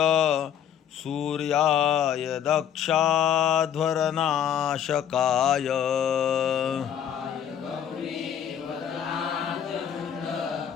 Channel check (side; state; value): right; quieter; 9.3 dB